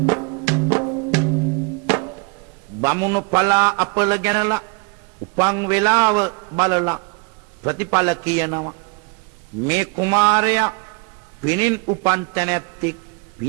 බමුණු පලා අපල ගැනලා උපන් වෙලාව බලලා ප්‍රතිඵල කියනවා. මේ කුමාරයා පිනින් උපන් තැනැත්තෙක්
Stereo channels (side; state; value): left; quieter; 32.0 dB